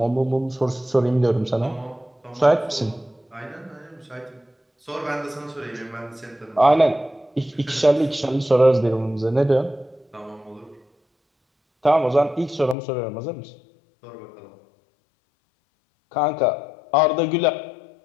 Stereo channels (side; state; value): right; drops out; at 12.8 s